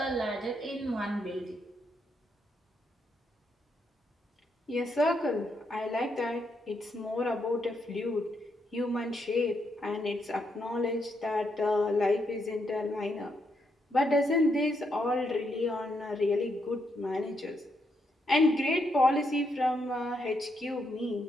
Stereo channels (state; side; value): normal; both; correlation 0.79